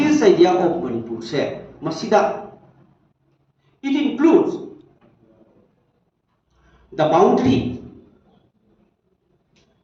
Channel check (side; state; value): both; identical; correlation 1.00